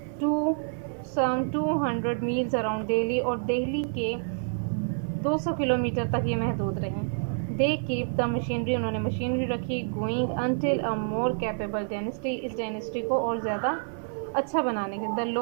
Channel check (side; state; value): left; silent; 59 dB below the other